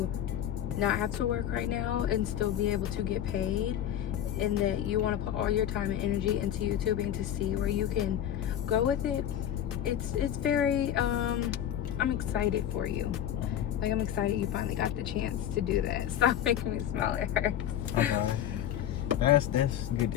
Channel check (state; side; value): quieter; right; 10.9 dB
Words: not have to work right now and still be able to get paid, and that you want to put all your time and energy into YouTubing to see where you can go with it. It's very I'm excited for you. Like, I'm excited you finally got the chance to do that. Stop making me smile, it hurts. Okay. That's good